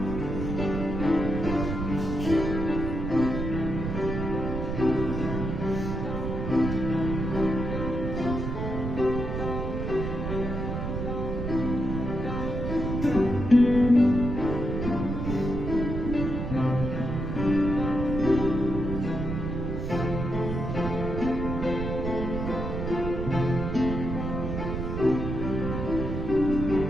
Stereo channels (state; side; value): noise; right; rumble, 3 dB below the sound